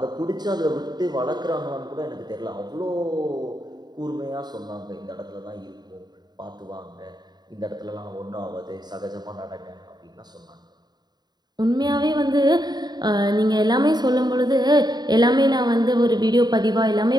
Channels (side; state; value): left; late; 0.20 ms